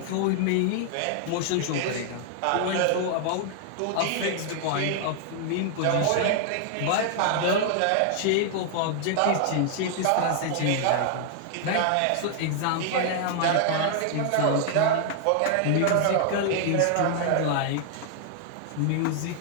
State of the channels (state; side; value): different; both; correlation 0.00